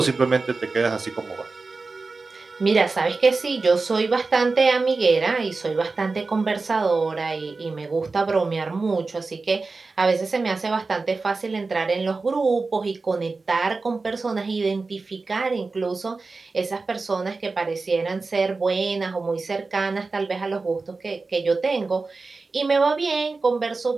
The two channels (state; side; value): quieter; left; 3.9 dB